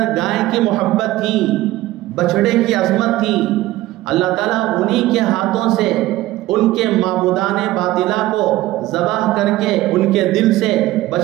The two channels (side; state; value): left; quieter; 16.6 dB